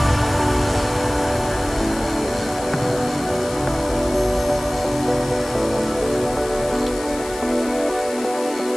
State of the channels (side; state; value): left; noise; hiss, 15 dB below the sound